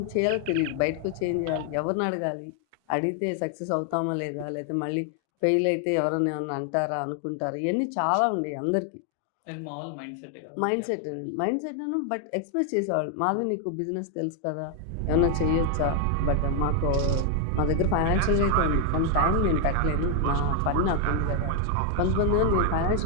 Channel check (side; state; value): both; different; correlation 0.01